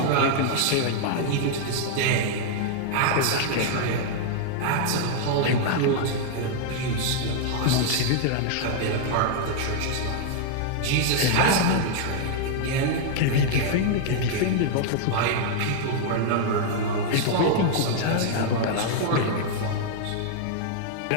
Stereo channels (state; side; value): different; both; correlation -0.01